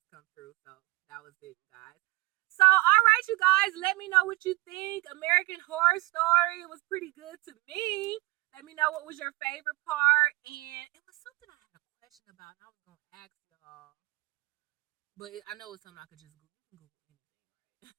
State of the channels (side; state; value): left; quieter; 20.9 dB